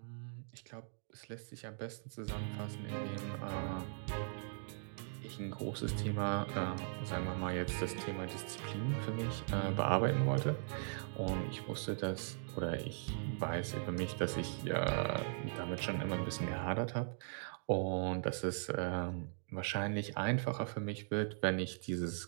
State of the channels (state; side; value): silent; left; digital silence